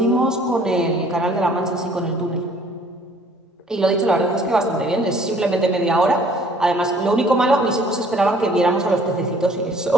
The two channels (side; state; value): both; normal; correlation 0.57